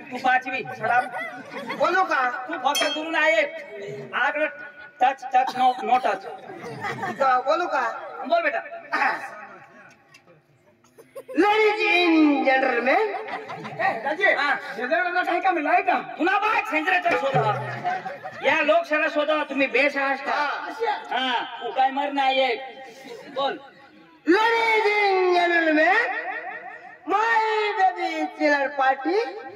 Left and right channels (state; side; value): identical; both; correlation 1.00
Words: तू 5वी छडा बोलू का तू फक्त दुरून आहे आकडे टच नो टच बोलू का बोल बेटा लेडीज इन जेंटलमैन दाजी हा. शेजारला काही का मिळाय का पुन्हा बाय सेंद्राचा शोधा या लोकशाला शोधा तुम्ही बेस आहात का हा तू काय मर नाही बोल ladies and gentleman my baby चिलर पार्टी